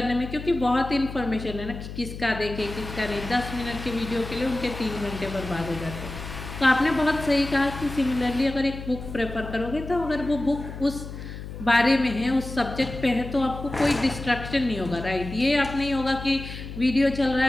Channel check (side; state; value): left; noise; hum, 10 dB below the sound